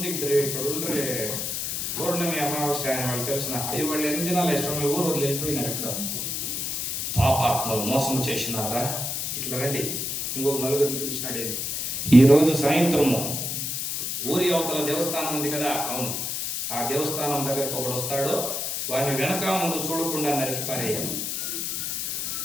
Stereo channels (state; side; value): noise; left; hiss, 2 dB below the sound